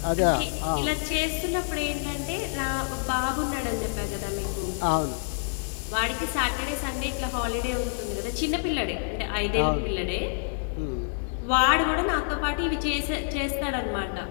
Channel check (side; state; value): right; silent; digital silence